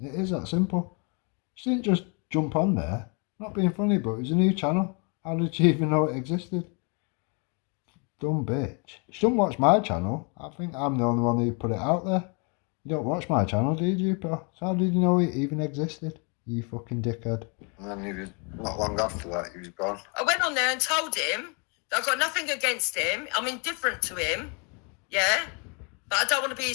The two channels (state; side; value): quieter; right; 34.5 dB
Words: is that simple. She didn't just jump on there. Not being funny, but it was a new channel. How did she even know it existed? Dumb bitch. She don't watch my channel. I think I'm the only one who put it out there. You don't watch my channel, do you, Jupiter? So how did you know it even existed? You fucking dickhead. And then he was, not long after that, he was gone. I went on there and told him that I've got nothing against him. I'm indifferent to him. Yeah? But I don't want to be